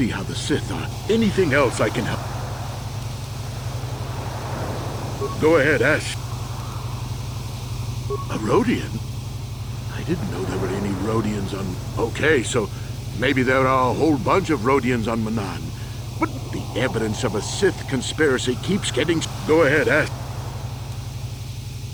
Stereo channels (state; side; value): noise; right; hiss, 27 dB below the sound